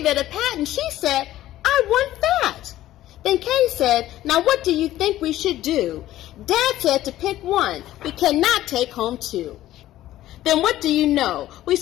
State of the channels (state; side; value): quieter; right; 14.3 dB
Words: it a pat and she said, I want that. Then Kay said, now what do you think we should do? Dad said to pick one. We cannot take home two. Then what do you know? We